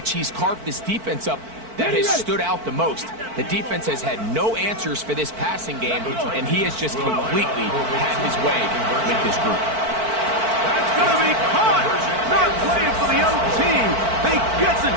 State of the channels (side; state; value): left; late; 4.5 ms